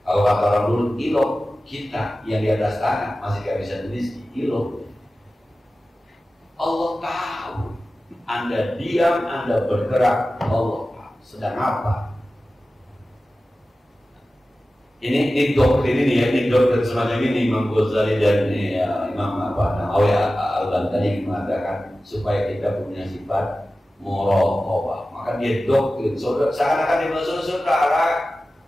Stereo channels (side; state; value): both; normal; correlation 0.95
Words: Kalau kata orang dulu, kilo kita yang di atas tanah masih gak bisa meneliti, kilo. Allah tahu. Anda diam, Anda bergerak, Allah tahu sedang apa. Ini doktrin ini ya, ini doktrin semacam ini Imam Ghazali dan Imam Nawawi Al-Bantani mengatakan supaya kita punya sifat muraqabah. Maka dia doktrin, seakan-akan dia saudara,